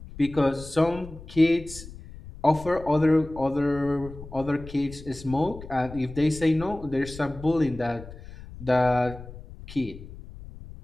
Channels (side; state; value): left; noise; rumble, 15 dB below the sound